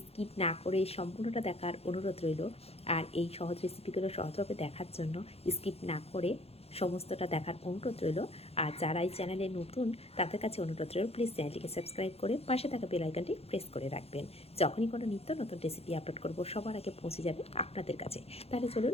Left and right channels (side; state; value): right; late; 0.29 ms